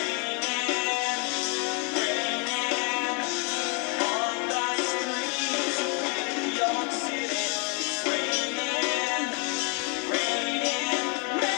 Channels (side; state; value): right; quieter; 35.0 dB